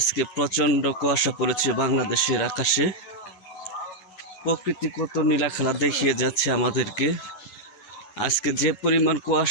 প্রচণ্ড কুয়াশা পড়েছে বাংলাদেশের আকাশে। প্রকৃতি কত নীলাখেলা দেখিয়ে যাচ্ছে আমাদেরকে। আজকে যে পরিমাণ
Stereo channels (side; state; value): right; late; 9.7 ms